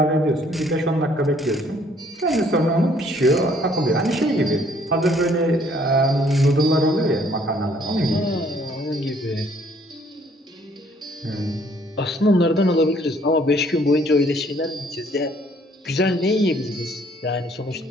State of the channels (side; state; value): both; normal; correlation 0.62